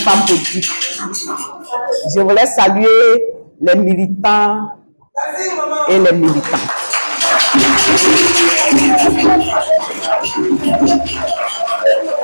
politiques. Je voulais saluer les militants et les militantes.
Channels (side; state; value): both; inverted; correlation -1.00